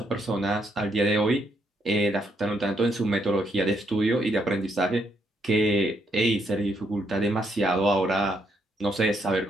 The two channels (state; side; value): normal; both; correlation 0.75